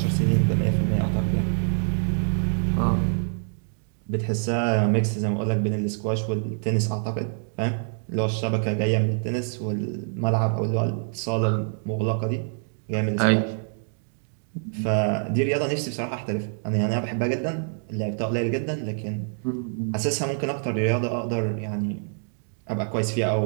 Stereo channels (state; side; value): silent; left; digital silence